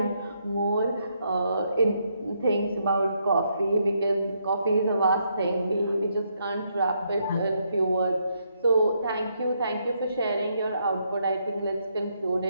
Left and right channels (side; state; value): both; inverted; correlation -0.76